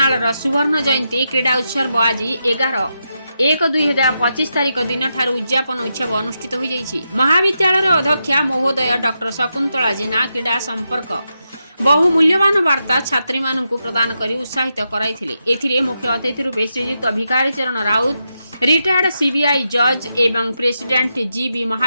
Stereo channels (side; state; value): both; inverted; correlation -0.85